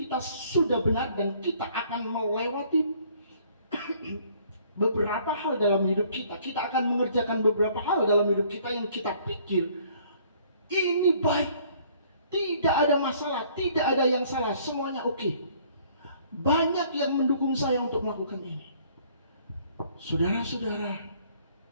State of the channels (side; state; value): both; inverted; correlation -0.59